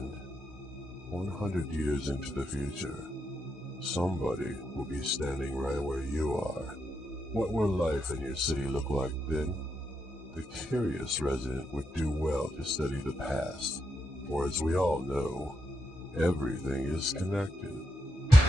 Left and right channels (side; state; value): both; normal; correlation 0.83